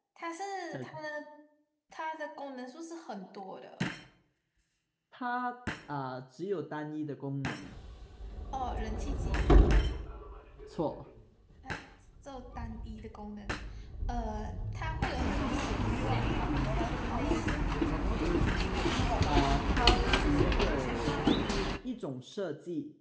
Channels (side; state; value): both; identical; correlation 1.00